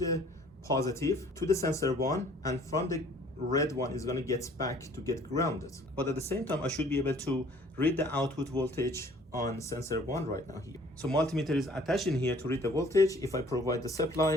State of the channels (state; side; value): normal; both; correlation 0.55